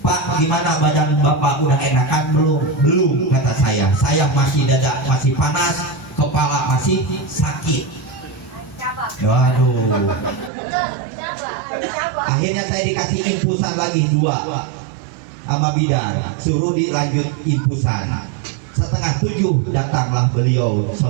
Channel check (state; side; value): drops out; left; at 10.5 s